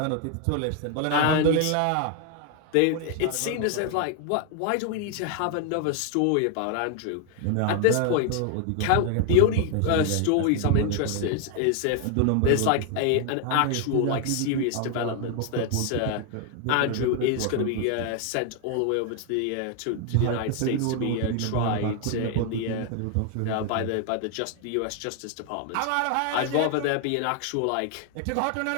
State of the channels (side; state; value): both; different; correlation 0.00